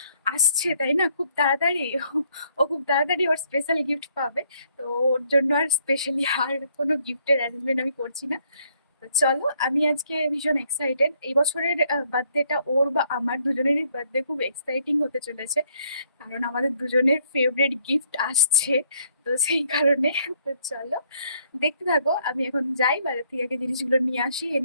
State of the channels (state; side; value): inverted; both; correlation -0.68